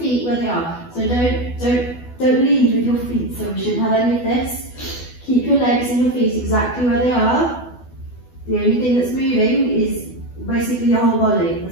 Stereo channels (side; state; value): right; late; 12 ms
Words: where they are. So don't lead with your feet, so we shouldn't have any of this. Keep your legs and your feet exactly where they are. The only thing that's moving is basically your whole body